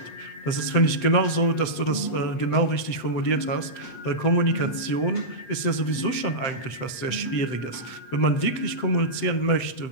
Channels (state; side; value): late; right; 7.7 ms